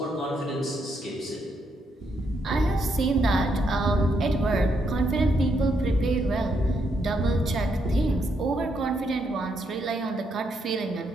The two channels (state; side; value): normal; both; correlation 0.77